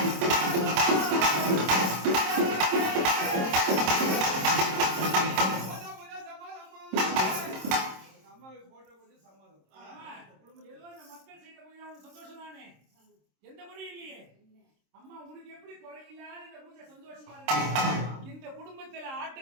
எந்த முறையும் இல்லையே. அம்மா உனக்கு எப்படி குறையில்லாத இந்த பூஜை சந்தோஷமா இருக்கு? இந்த குடும்பத்துல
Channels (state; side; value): late; left; 26 ms